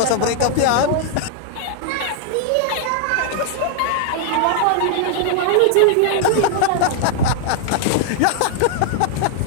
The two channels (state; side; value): different; both; correlation 0.00